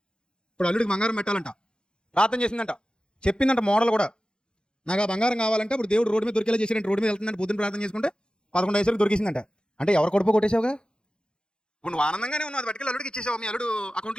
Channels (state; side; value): late; right; 0.049 ms